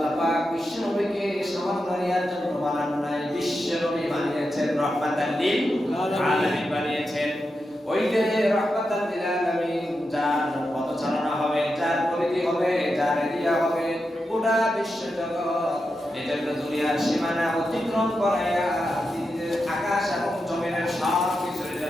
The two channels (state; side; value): normal; both; correlation 0.88